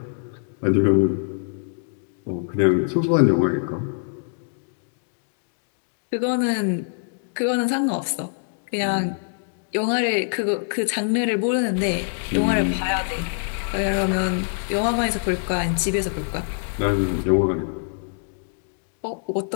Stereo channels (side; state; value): right; silent; digital silence